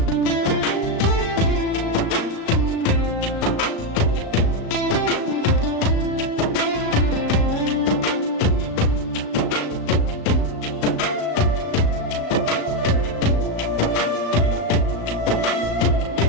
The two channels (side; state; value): right; late; 36 ms